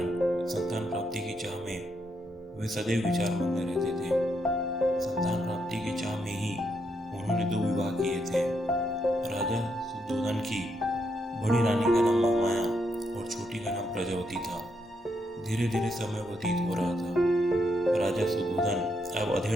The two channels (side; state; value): both; normal; correlation 0.78